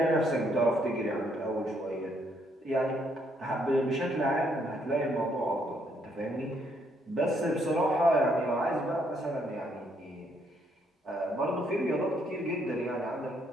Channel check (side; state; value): both; normal; correlation 0.72